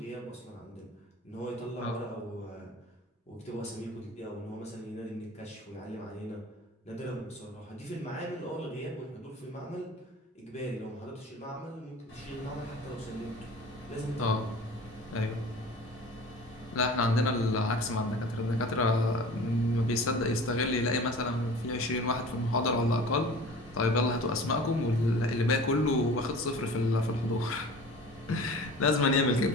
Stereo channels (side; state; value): both; normal; correlation 0.41